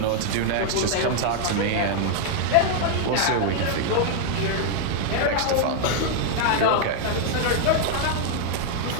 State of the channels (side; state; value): both; different; correlation 0.00